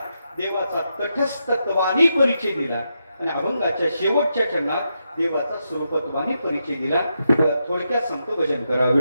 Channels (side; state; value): both; inverted; correlation -0.84